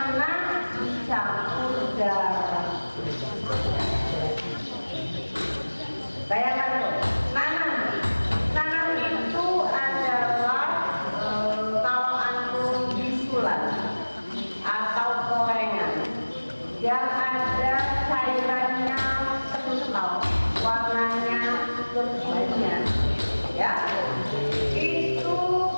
dicampur darah. Bayangkan tuh, nanah itu adalah kalau antum bisulan atau gorengan yang ada cairannya kental, warnanya berbanyak, ya. Itu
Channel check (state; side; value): inverted; both; correlation -1.00